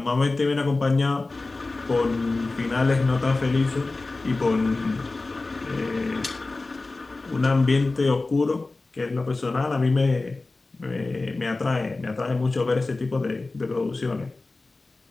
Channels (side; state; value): right; quieter; 3.3 dB